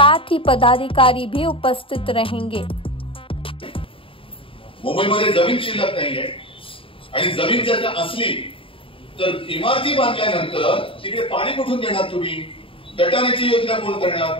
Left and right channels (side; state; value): right; late; 0.26 ms